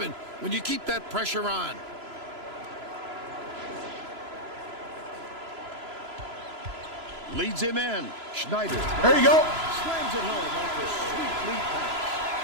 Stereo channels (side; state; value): left; late; 3.0 ms